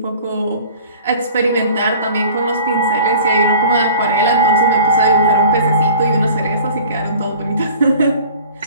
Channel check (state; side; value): inverted; both; correlation -0.45